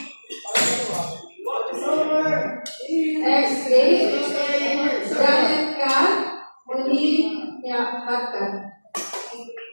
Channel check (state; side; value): inverted; both; correlation -1.00